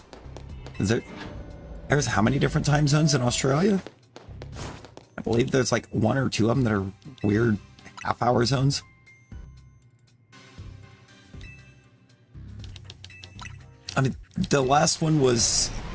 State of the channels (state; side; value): identical; both; correlation 1.00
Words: There's how many different time zones in Australia? I believe there's like one or two of them that are weird half-hour zones. I mean, the last one was